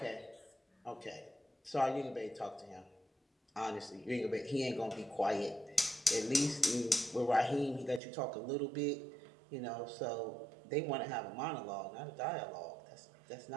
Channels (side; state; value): left; drops out; at 8.0 s